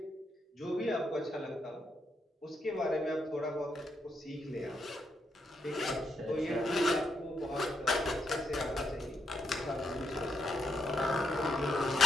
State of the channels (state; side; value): normal; both; correlation 0.80